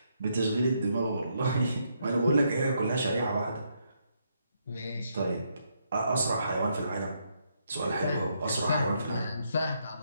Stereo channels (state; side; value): inverted; both; correlation -0.76